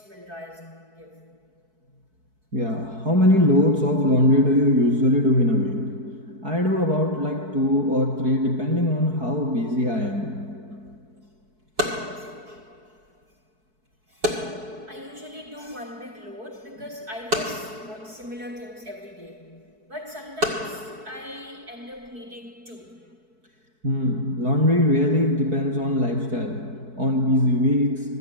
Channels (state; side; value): late; left; 4.6 ms